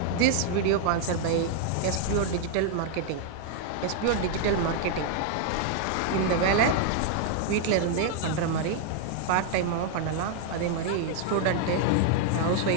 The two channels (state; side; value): different; both; correlation 0.00